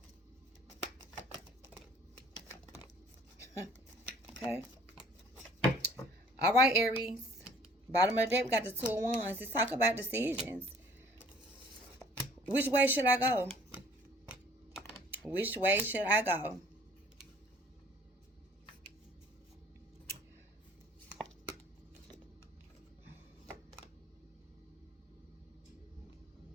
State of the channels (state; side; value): normal; both; correlation 0.54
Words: Okay. All right, Aries. Bottom of the deck, we got the 2 of Wands. Let's talk about decisions. Which way should I go? Which way should I go?